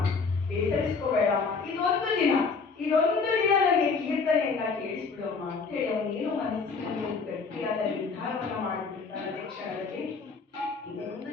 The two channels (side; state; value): right; quieter; 4.8 dB